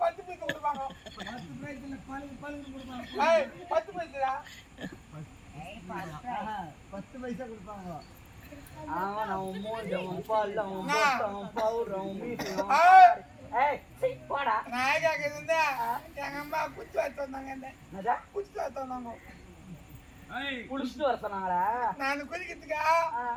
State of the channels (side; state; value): both; identical; correlation 1.00